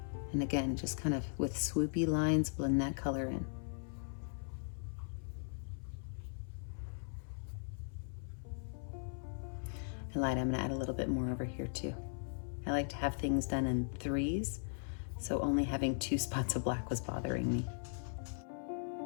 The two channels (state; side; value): silent; right; 52 dB below the other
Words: And again, just kind of with swoopy lines, blend that color in. And light, I'm gonna add a little bit more over here too. I like to have things done in threes, so only having 2 spots of black was bothering me.